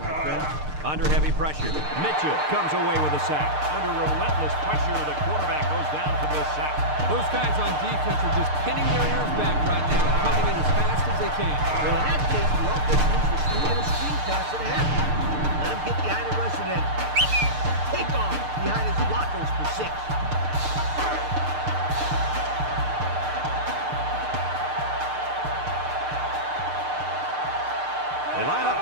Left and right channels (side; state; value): left; late; 6.6 ms